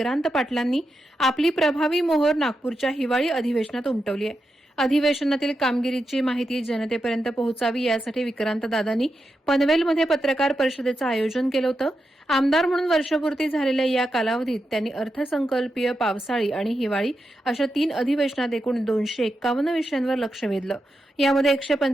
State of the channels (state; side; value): normal; both; correlation 0.88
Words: पाटलांनी आपली प्रभावी मोहोर नागपूरच्या हिवाळी अधिवेशनात उमटवली आहे. अधिवेशनातील कामगिरीची माहिती जनतेपर्यंत पोहोचावी यासाठी विक्रांत दादांनी पनवेलमध्ये पत्रकार परिषदेचं आयोजन केलं होतं. आमदार म्हणून वर्षपूर्ती झालेल्या या कालावधीत त्यांनी अर्थसंकल्पीय, पावसाळी आणि हिवाळी अशा 3 अधिवेशनात एकूण 251 विषयांवर लक्ष वेधलं. यामध्ये